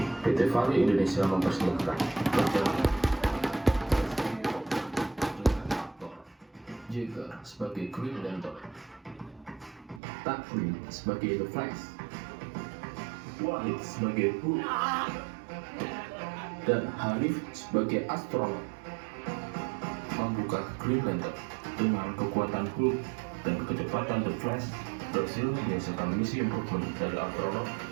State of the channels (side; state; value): left; drops out; at 10.0 s